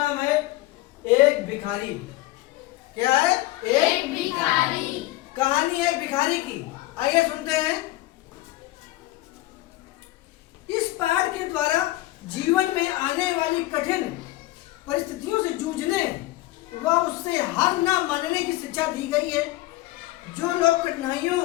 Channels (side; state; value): right; quieter; 17.7 dB